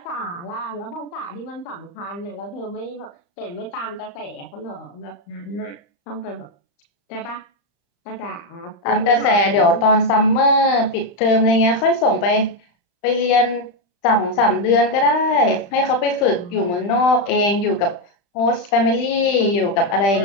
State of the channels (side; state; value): right; late; 34 ms